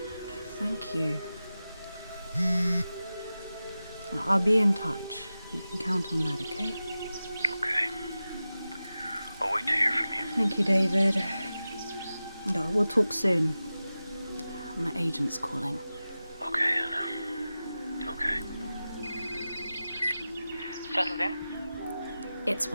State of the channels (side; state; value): both; inverted; correlation -0.94